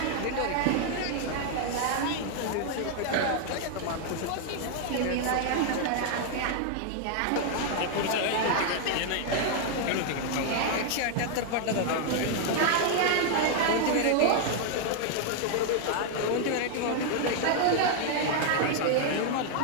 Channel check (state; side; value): different; both; correlation 0.00